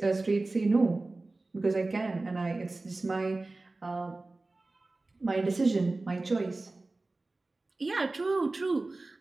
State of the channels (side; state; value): left; quieter; 3.2 dB